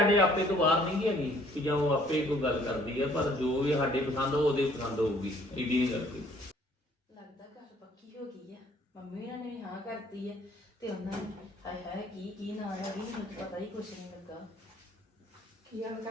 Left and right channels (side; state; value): both; normal; correlation 0.60